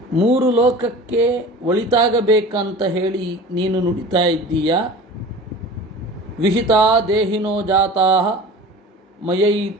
3 ಲೋಕಕ್ಕೆ ಒಳಿತಾಗಬೇಕಂತ ಹೇಳಿ ನೀನು ನುಡಿತಾ ಇದ್ದೀಯಾ. ವಿಹಿತಾ ದೇಹಿನೋ ಜಾತಾಃ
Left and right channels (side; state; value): both; normal; correlation 0.38